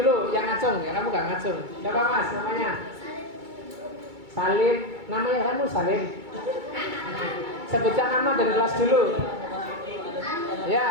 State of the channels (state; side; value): late; left; 2.3 ms